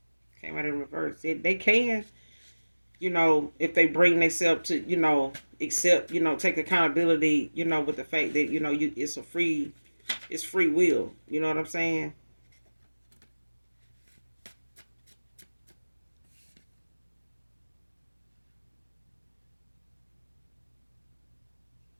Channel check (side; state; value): both; inverted; correlation -1.00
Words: Came out in reverse. They can, if they bring themselves to, accept, take accountability, with the fact that, it's free will. You know what I'm saying?